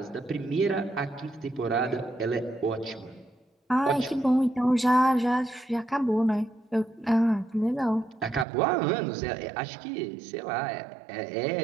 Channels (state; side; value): drops out; left; at 8.5 s